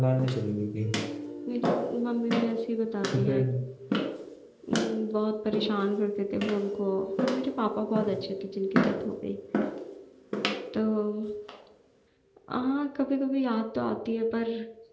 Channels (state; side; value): identical; both; correlation 1.00